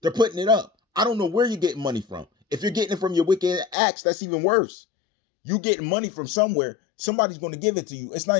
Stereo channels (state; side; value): drops out; right; at 3.8 s